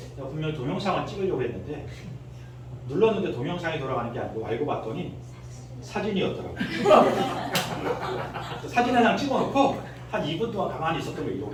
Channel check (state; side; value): identical; both; correlation 1.00